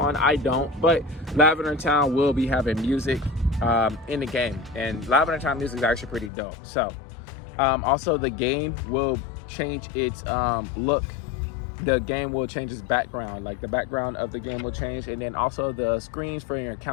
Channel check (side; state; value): right; drops out; at 6.3 s